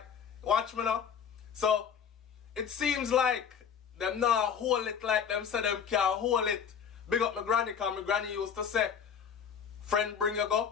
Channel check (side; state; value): right; quieter; 7.4 dB